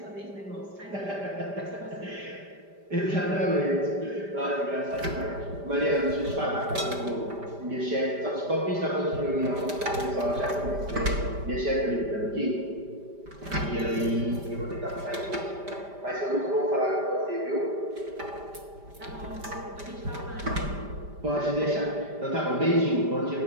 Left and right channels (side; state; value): left; late; 5.0 ms